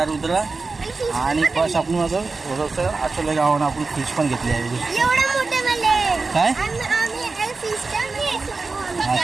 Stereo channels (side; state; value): left; quieter; 4.0 dB